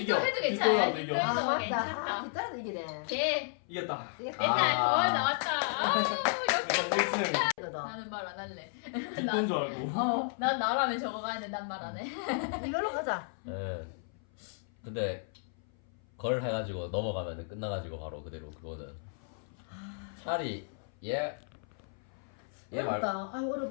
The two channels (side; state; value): right; silent; 56 dB below the other